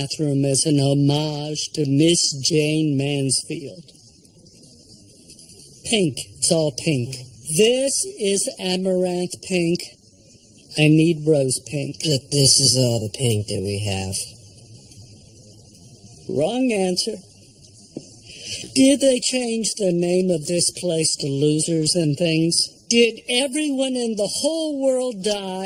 as an homage to Miss Jane Mansfield. Pink. It's all pink. This is amaranth pink. I need rose pink. But this is all the pink that we have. Wrong answer. Did they change the name of this place to Losers and Things? Did everyone in the whole world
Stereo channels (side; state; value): both; identical; correlation 1.00